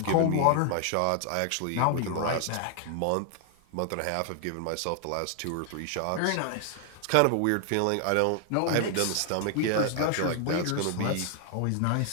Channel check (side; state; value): both; different; correlation 0.00